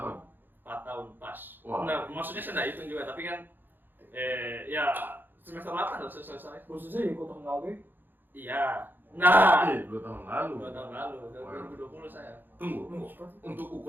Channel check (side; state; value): left; late; 0.093 ms